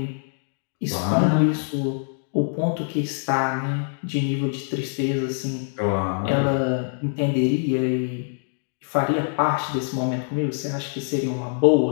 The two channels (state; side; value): silent; right; 62 dB below the other